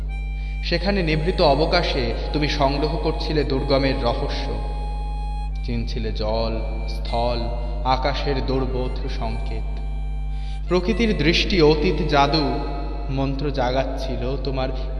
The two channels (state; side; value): identical; both; correlation 1.00